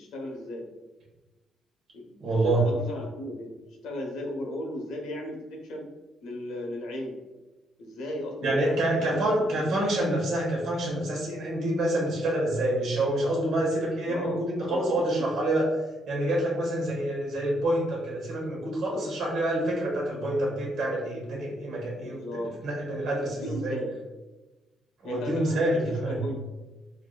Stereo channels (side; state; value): both; normal; correlation 0.72